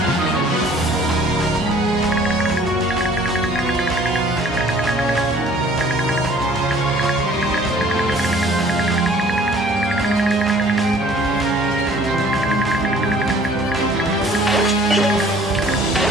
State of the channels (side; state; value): both; normal; correlation 0.54